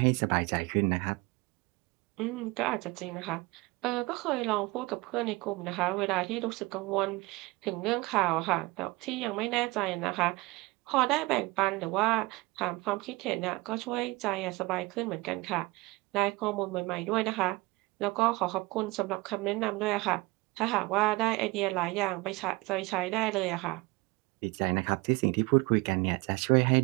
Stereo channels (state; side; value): quieter; left; 23.0 dB